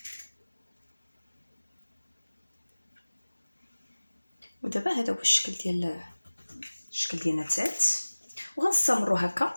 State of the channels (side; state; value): both; inverted; correlation -1.00